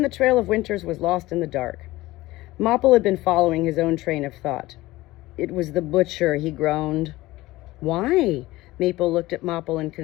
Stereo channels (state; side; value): quieter; right; 18.5 dB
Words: the trail of winters was lost in the dark. Mopple had been following his own train of thought. "It was the butcher," he groaned. Why? Maple looked at Mopple in